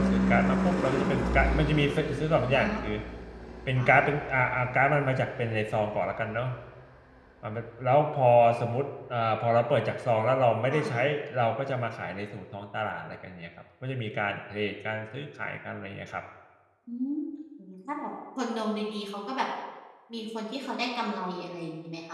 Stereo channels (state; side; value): identical; both; correlation 1.00